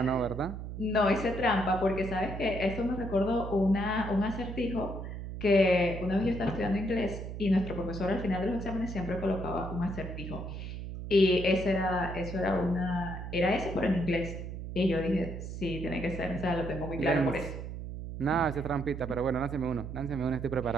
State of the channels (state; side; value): noise; right; hum, 7 dB below the sound